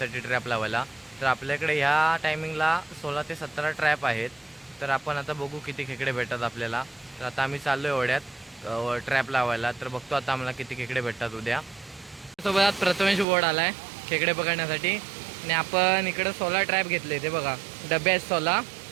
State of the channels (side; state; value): left; drops out; at 13.2 s